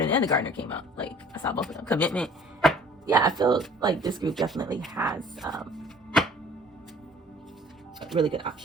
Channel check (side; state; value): both; normal; correlation 0.52